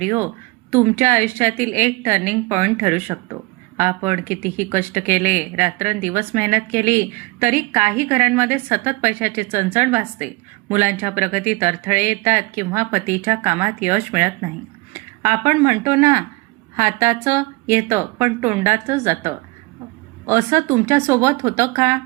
तुमच्या आयुष्यातील एक टर्निंग पॉइंट ठरू शकतो. आपण कितीही कष्ट केले, रात्रंदिवस मेहनत केली, तरी काही घरांमध्ये सतत पैशाची चणचण भासते. मुलांच्या प्रगतीत अडथळे येतात किंवा पतीच्या कामात यश मिळत नाही. आपण म्हणतो ना, हाताचं येतं पण तोंडाचं जातं. असं तुमच्यासोबत होतं का?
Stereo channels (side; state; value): left; quieter; 24.5 dB